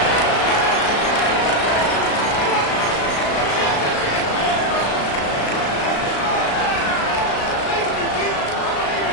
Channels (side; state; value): right; late; 36 ms